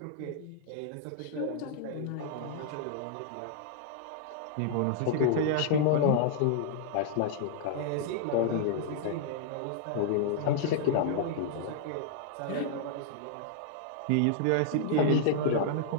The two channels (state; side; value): different; both; correlation -0.01